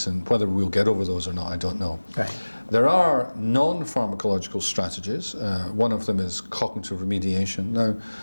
and whether we'll get over those or not, I don't know. Right. There are non-pharmacological strategies. One of them is cognitive remediation. Now,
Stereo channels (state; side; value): inverted; both; correlation -1.00